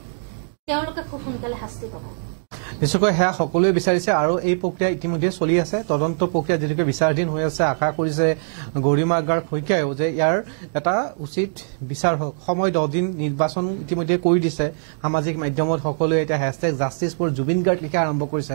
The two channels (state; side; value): silent; left; digital silence